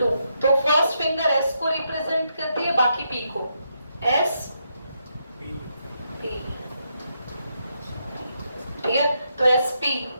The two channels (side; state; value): both; inverted; correlation -0.80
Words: तो फर्स्ट फिंगर S को रिप्रेजेंट करती है, बाकी P को। S P, ठीक है? तो SP